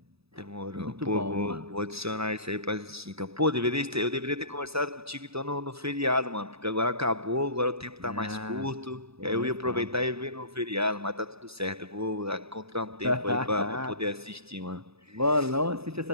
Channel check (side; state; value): left; late; 0.78 ms